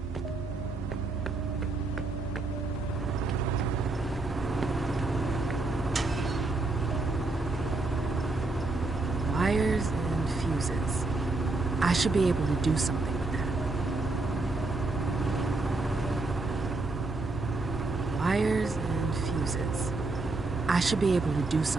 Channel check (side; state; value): left; quieter; 3.3 dB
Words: Wires and fuses. I should be able to do something with that. Wires and fuses. I should be able to do